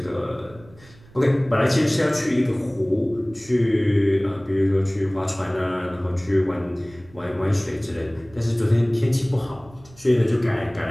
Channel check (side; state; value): right; noise; rumble, 24 dB below the sound